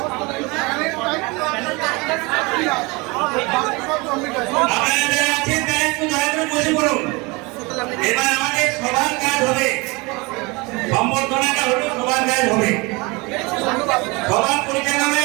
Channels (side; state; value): left; quieter; 25.9 dB